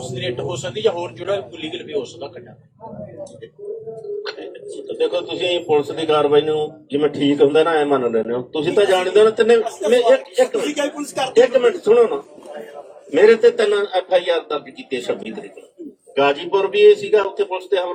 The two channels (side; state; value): both; identical; correlation 1.00